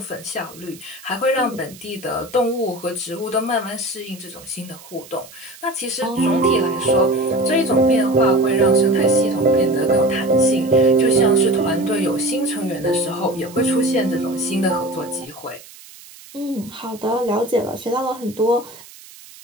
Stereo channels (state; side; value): noise; right; hiss, 20 dB below the sound